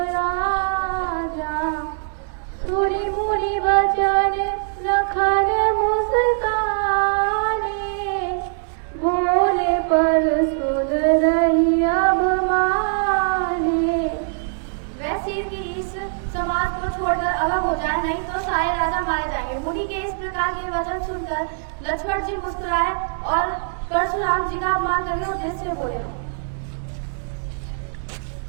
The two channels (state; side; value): silent; left; digital silence